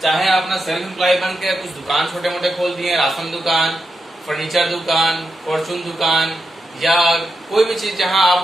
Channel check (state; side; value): normal; both; correlation 0.86